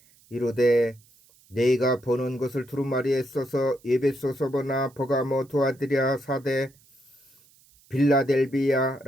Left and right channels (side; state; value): right; noise; hiss, 30 dB below the sound